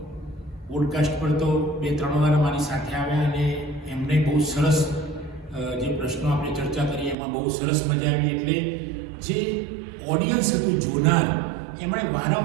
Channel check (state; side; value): drops out; left; at 7.2 s